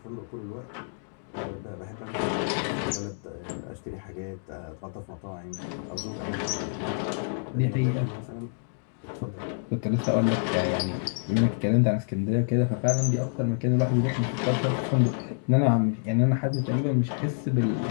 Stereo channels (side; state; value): right; silent; digital silence